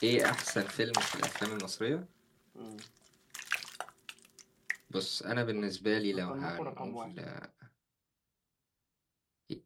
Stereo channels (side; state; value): both; identical; correlation 1.00